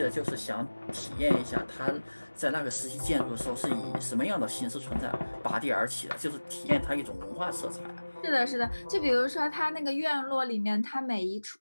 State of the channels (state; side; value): inverted; both; correlation -1.00